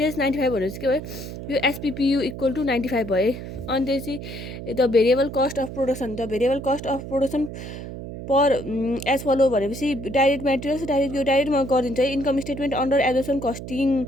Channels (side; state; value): right; noise; hum, 9 dB below the sound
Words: भने चाहिँ के भयो, यो एसपिपियु इक्वल टु 95 भयो। अनि त्यसपछि the variable cost of production per as follow भनेपछि डाइरेक्ट मेटेरियल्स यो डाइरेक्टमा गरिदिन्छ है। Income statement under absorption